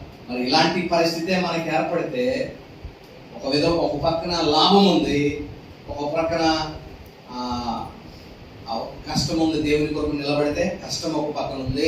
మరి ఇలాంటి పరిస్థితే మనకి ఏర్పడితే ఒక పక్కన లాభం ఉంది, ఒక పక్కన కష్టం ఉంది. దేవుని కొరకు నిలబడితే కష్టం ఒక పక్కన ఉంది,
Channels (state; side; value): identical; both; correlation 1.00